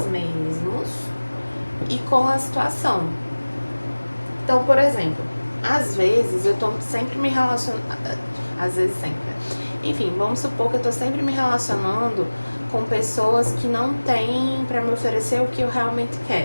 mesmos e com a situação. Então, por exemplo, às vezes eu tô sempre me relacionando, às vezes sempre, enfim, vamos supor que eu tô sempre me relacionando com pessoas que não têm pra me oferecer o que eu realmente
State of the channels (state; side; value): inverted; both; correlation -1.00